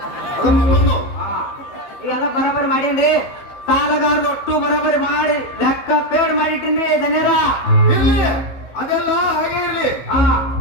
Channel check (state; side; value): late; right; 15 ms